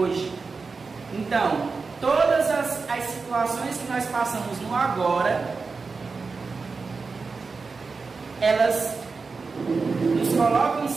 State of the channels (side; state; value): left; quieter; 4.5 dB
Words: Então, todas as situações que nós passamos no agora, elas nos colocam em